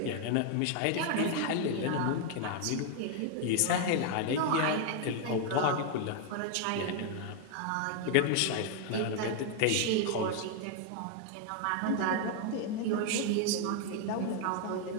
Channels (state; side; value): different; both; correlation 0.00